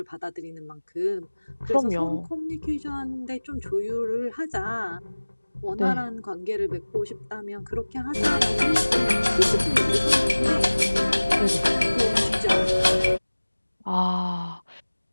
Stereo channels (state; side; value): inverted; both; correlation -1.00